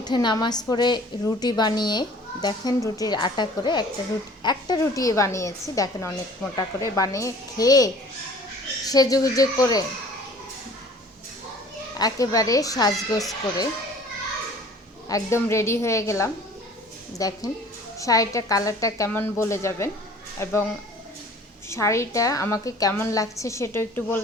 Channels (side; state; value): both; normal; correlation 0.49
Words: নামাজ পড়ে রুটি বানিয়ে, দেখেন রুটির আটা করে একটা রুটি বানিয়েছি, দেখেন অনেক মোটা করে বানিয়ে খেয়ে সেজেগুজে করে একেবারে সাজগোজ করে একদম রেডি হয়ে গেলাম। দেখেন শাড়িটা কালারটা কেমন বলে যাবেন, এবং শাড়িটা আমাকে কেমন লাগছে সেটা একটু